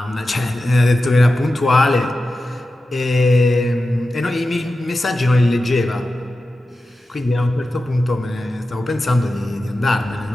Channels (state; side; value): normal; both; correlation 0.92